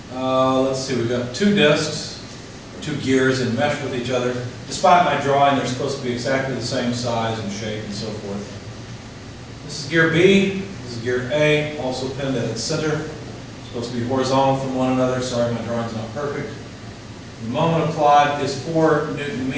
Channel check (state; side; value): identical; both; correlation 1.00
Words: Let's see, we've got two disks, two gears and mesh with each other. Despite my drawing, they're supposed to be exactly the same size and shape and so forth. This is gear B, this is gear A, also pinned at its center. Supposed to be horizontal from one another. Sorry, my drawing's not perfect. The moment applied is 4 Newton